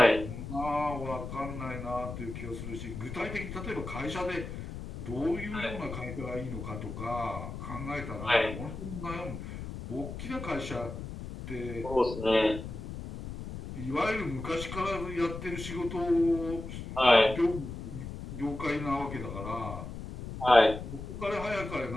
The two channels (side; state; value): left; noise; rumble, 8 dB below the sound